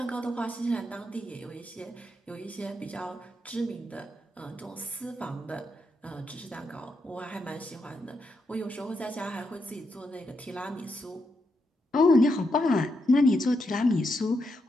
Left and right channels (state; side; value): normal; both; correlation 0.82